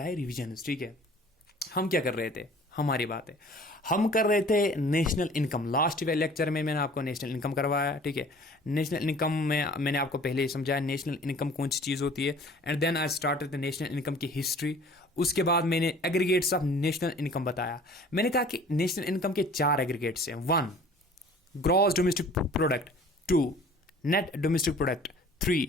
है, रिविजन. ठीक है, हम क्या कर रहे थे, हमारी बात है, हम कर रहे थे नेशनल इनकम. लास्ट लेक्चर में मैंने आपको नेशनल इनकम करवाया. ठीक है, नेशनल इनकम में मैंने आपको पहले ही समझाया नेशनल इनकम कौन सी चीज़ होती है, and then I started the national income की हिस्ट्री. उसके बाद मैंने एग्रीगेट्स ऑफ नेशनल इनकम बताया. मैंने कहा कि नेशनल इनकम के 4 एग्रीगेट्स हैं. 1 gross domestic product, 2 net domestic product, 3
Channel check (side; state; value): both; normal; correlation 0.49